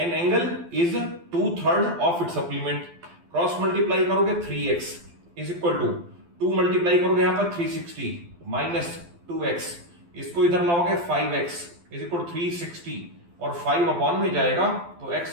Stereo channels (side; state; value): left; late; 12 ms